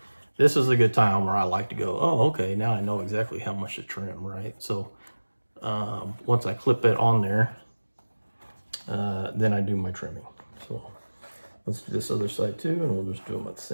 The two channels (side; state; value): both; inverted; correlation -1.00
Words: this is a good time where I like to go, oh, okay, now I know exactly how much to trim, right? So once I clip it on there, then I do my trimming. So let's do this other side too, and we'll just do them at the